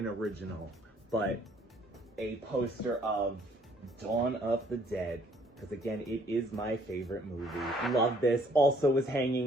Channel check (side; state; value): both; normal; correlation 0.62